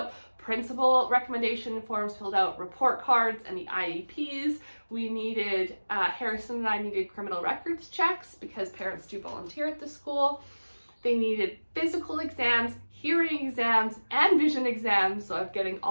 principal recommendation forms filled out, report cards, and the IEPs. We needed, Harrison and I needed criminal records checks because parents do volunteer at the school. They needed physical exams, hearing exams, and vision exams, so I'm getting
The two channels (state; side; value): inverted; both; correlation -1.00